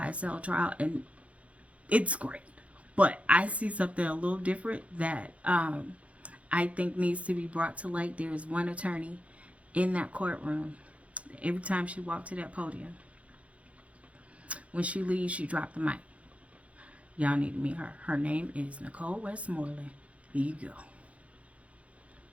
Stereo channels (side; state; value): left; late; 0.064 ms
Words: trial, and it's great. But I see something a little different that I think needs to be brought to light. There is one attorney in that courtroom. Every time she walked to that podium, when she leaves, she dropped the mic. Y'all need to meet her. Her name is Nicole Westmoreland. Here you go.